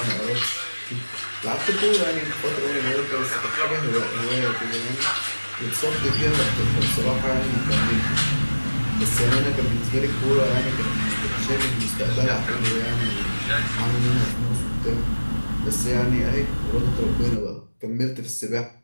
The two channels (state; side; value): inverted; both; correlation -1.00